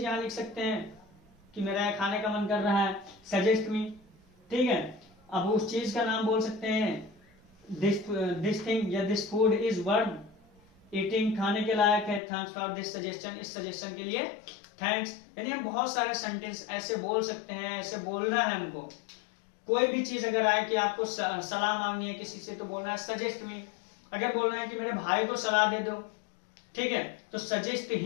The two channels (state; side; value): drops out; right; at 12.2 s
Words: यहाँ लिख सकते हैं कि मेरा खाने का मन कर रहा है, सजेस्ट मी, ठीक है। अब उस चीज का नाम बोल सकते हैं, दिस थिंग या this food is worth eating, खाने के लायक है, थैंक्स फॉर दिस सजेशन, इस सजेशन के लिए थैंक्स। यानी हम बहुत सारे सेंटेंस ऐसे बोल सकते हैं, ऐसे बोलना है हमको। कोई भी चीज अगर आए कि आपको सलाह मांगनी है किसी से तो बोलना है सजेस्ट मी। अगर बोलना है कि मेरे भाई को सलाह दे दो, ठीक है, तो सजेस्ट